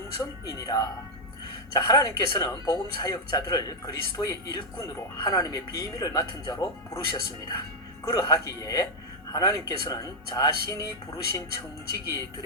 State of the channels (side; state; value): both; normal; correlation 0.00